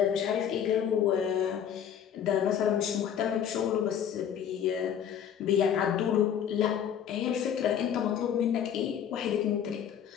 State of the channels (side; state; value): right; quieter; 8.9 dB